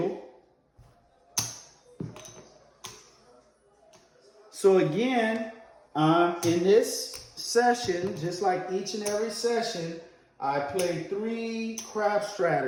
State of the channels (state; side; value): identical; both; correlation 1.00